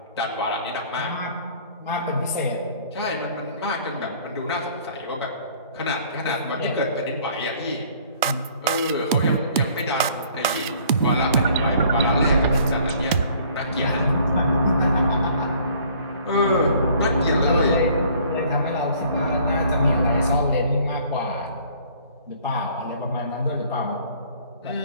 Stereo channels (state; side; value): inverted; both; correlation -0.56